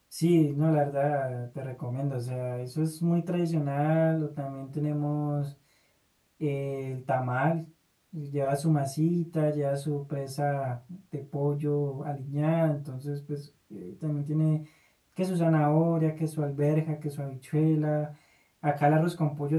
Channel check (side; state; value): both; identical; correlation 1.00